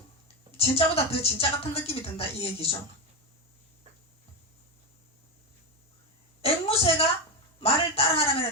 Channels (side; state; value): both; normal; correlation 0.12